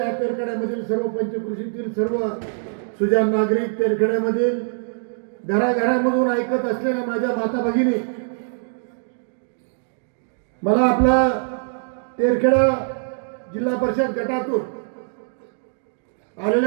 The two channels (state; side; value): silent; left; digital silence